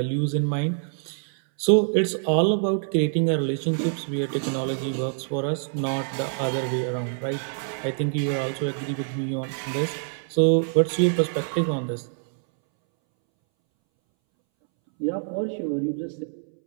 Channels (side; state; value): left; silent; 62 dB below the other